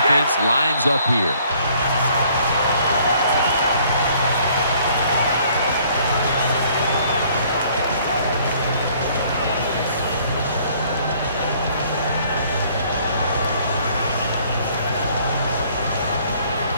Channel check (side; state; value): both; inverted; correlation -0.60